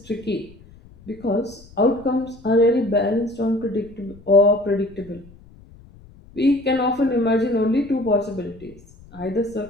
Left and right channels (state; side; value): noise; left; rumble, 23 dB below the sound